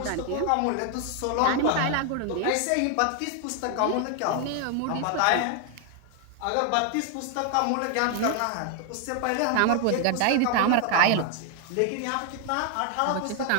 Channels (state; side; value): different; both; correlation 0.00